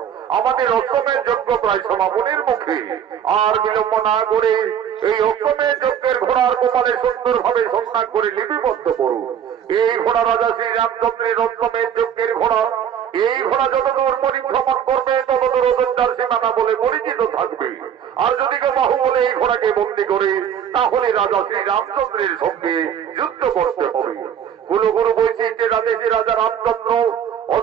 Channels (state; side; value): quieter; left; 8.9 dB